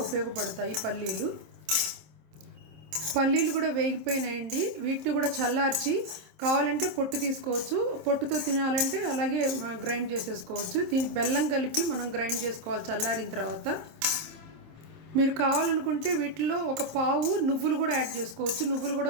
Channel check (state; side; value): late; left; 26 ms